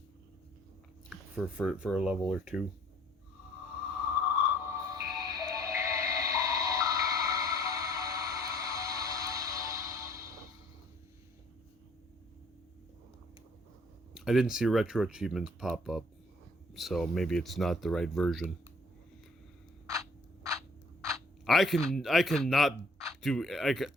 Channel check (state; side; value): normal; both; correlation 0.58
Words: For a level or two. I didn't see retro achievements pop up, so maybe it's not the right version.